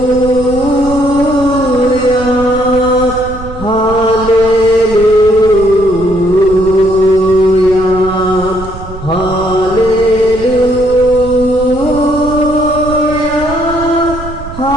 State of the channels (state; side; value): noise; right; rumble, 12 dB below the sound